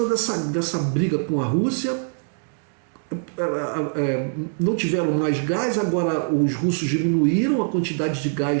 dessa briga com a Rússia, não tiveram mais gás. Agora os russos diminuíram a quantidade de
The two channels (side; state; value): left; silent; 56 dB below the other